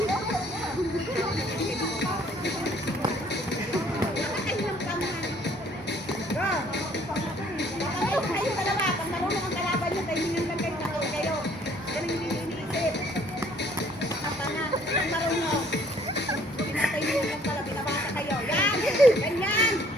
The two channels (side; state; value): both; normal; correlation 0.60